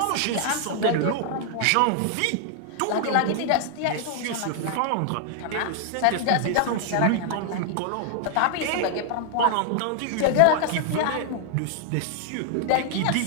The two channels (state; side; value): different; both; correlation 0.00